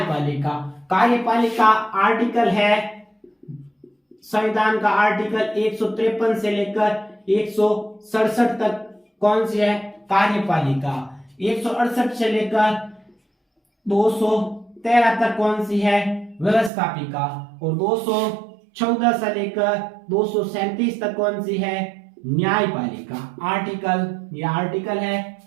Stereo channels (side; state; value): left; drops out; at 16.7 s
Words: कार्यपालिका आर्टिकल है संविधान का आर्टिकल 153 से लेकर 167 तक कौन सी है? कार्यपालिका। 168 से लेकर 213 तक कौन सी है? व्यवस्थापिका। और 214 से लेकर 237 तक कौन सी है? न्यायपालिका। ये आर्टिकल है